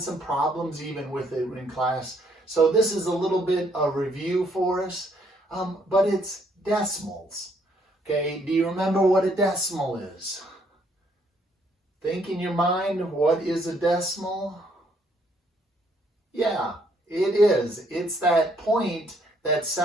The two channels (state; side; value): normal; both; correlation 0.69